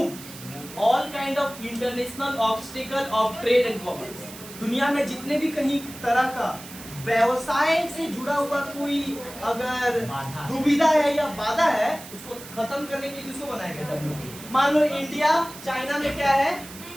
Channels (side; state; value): right; noise; hiss, 15 dB below the sound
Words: all kind of international obstacle of trade and commerce. दुनिया में जितने भी कहीं तरह का व्यवसाय से जुड़ा हुआ कोई अगर दुविधा है या बाधा है, उसको खत्म करने के लिए किसको बनाया गया, WTO। मान लो इंडिया चाइना में क्या है,